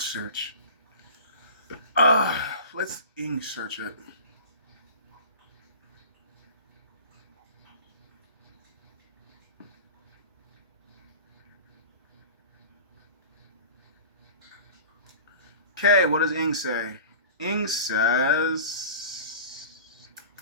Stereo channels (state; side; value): inverted; both; correlation -0.37